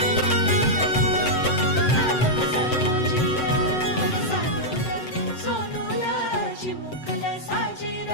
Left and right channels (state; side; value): late; right; 7.8 ms